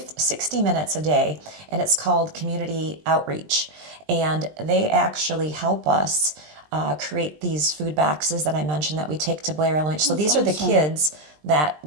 minutes a day, and it's called Community Outreach. And they actually help us create these food boxes that I mentioned that we take to Blair Elementary. So these are the kids that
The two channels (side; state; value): left; late; 20 ms